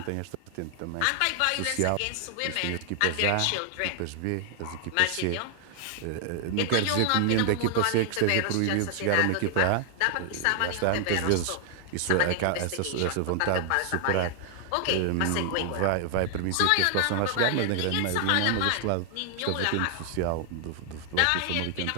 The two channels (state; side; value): different; both; correlation 0.00